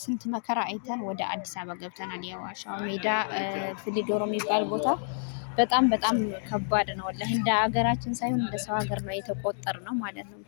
ስንት መከራ አይተን ወደ አዲስ አበባ ገብተናል። የዋሻው ሜዳ ፍሊዶሮ የሚባል ቦታ በጣም ከባድ ነው። ወላሂ እንደ ሀገራችን ሳይሆን እንደ ሰው ሀገር ነው የተቆጠርነው ማለት ነው።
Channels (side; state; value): right; silent; digital silence